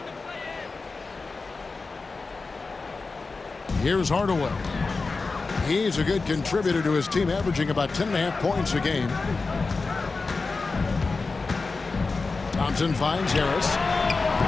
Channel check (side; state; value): right; quieter; 4.0 dB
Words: Here's Hardaway. He's a good contributor to his team, averaging about 10.5 points a game. Thompson finds Harris.